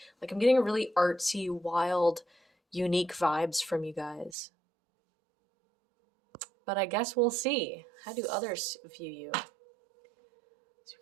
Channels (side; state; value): left; drops out; at 4.4 s